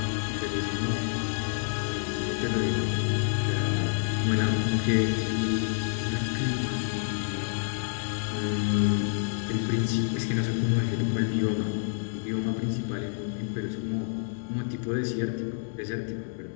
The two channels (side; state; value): right; silent; digital silence